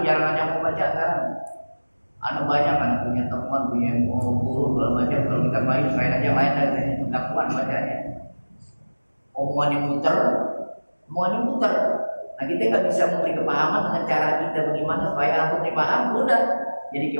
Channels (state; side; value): inverted; both; correlation -1.00